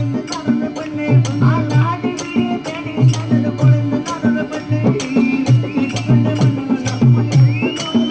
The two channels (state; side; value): identical; both; correlation 1.00